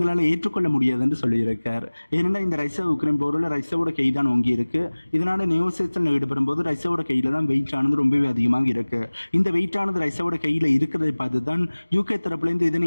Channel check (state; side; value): inverted; both; correlation -1.00